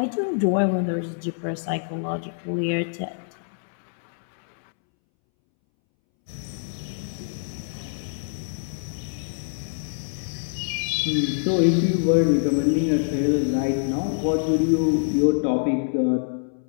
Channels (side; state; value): right; silent; 62 dB below the other